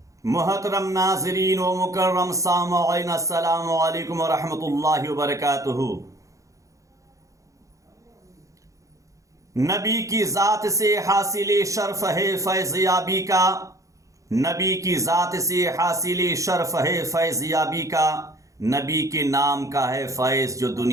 محترم ناظرین و مکرم سامعین، السلام علیکم ورحمۃ اللہ وبرکاتہ۔ نبی کی ذات سے حاصل شرف ہے فیض یابی کا، نبی کی ذات سے حاصل شرف ہے فیض یابی کا، نبی کے نام کا ہے فیض جو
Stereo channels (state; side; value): late; left; 0.16 ms